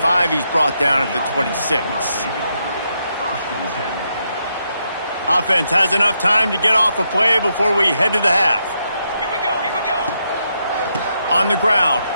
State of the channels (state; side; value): inverted; both; correlation -0.80